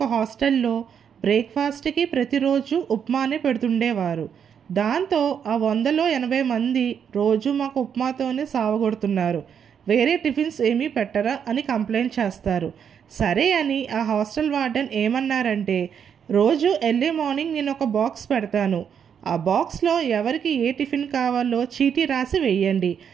హాస్టల్లో బ్రేక్ఫాస్ట్కి ప్రతిరోజు ఉప్మానే పెడుతుండేవారు. దాంతో ఆ 100లో 80 మంది రోజు మాకు ఉప్మాతోనే సావగొడుతున్నారు, వేరే టిఫిన్స్ ఏమీ పెట్టరా అని కంప్లైంట్ చేస్తారు. సరే అని ఆ హాస్టల్ వార్డెన్ ఏమన్నారంటే, రోజు ఎర్లీ మార్నింగ్ నేను ఒక బాక్స్ పెడతాను, ఆ బాక్స్లో ఎవరికి ఏ టిఫిన్ కావాలో చీటీ రాసి వేయండి,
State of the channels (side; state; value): left; quieter; 7.8 dB